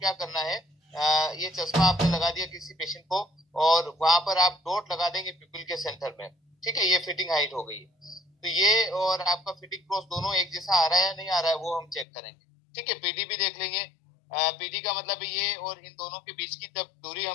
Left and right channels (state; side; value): drops out; right; at 12.1 s